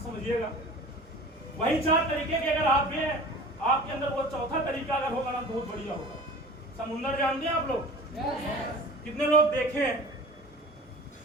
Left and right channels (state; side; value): normal; both; correlation 0.40